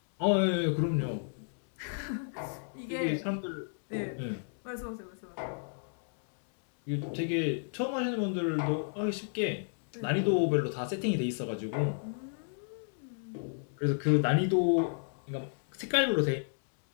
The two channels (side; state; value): right; silent; digital silence